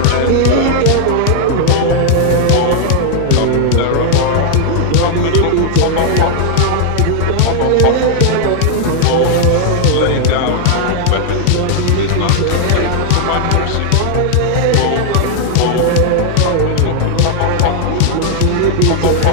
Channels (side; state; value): both; different; correlation 0.00